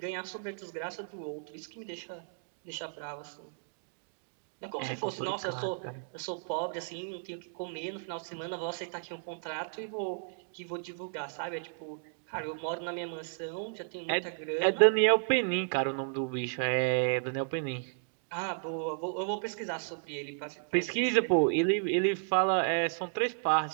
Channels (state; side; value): silent; left; digital silence